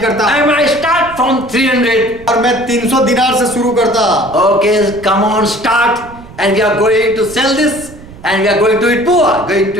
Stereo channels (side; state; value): right; noise; rumble, 18 dB below the sound